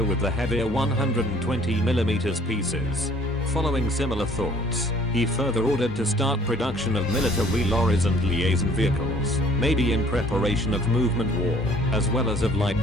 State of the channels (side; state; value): both; normal; correlation 0.56